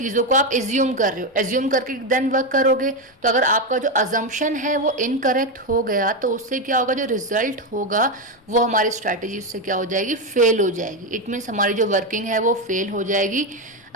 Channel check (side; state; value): both; normal; correlation 0.09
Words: को आप एज्यूम कर रहे हो, एज्यूम करके देन वर्क करोगे, तो अगर आपका जो अजम्पशन है वो इनकरेक्ट हो गया, तो उससे क्या होगा, जो रिजल्ट होगा वो हमारी स्ट्रैटेजी उससे क्या हो जाएगी, फेल हो जाएगी. इट मीन्स हमारी जो वर्किंग है वो फेल हो जाएगी